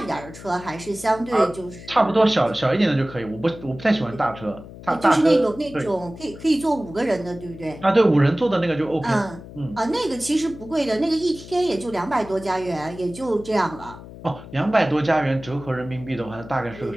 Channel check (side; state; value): left; noise; hum, 16 dB below the sound